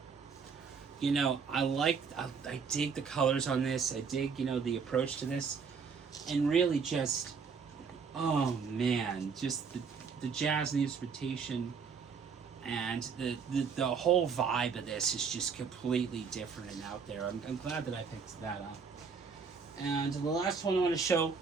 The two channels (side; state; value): left; quieter; 5.8 dB